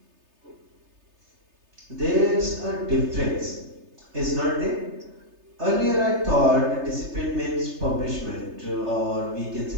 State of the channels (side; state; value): left; late; 3.3 ms